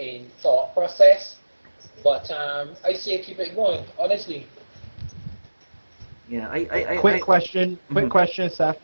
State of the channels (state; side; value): inverted; both; correlation -1.00